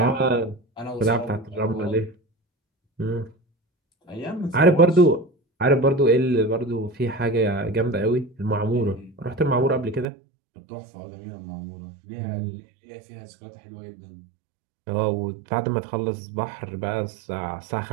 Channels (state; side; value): drops out; left; at 10.1 s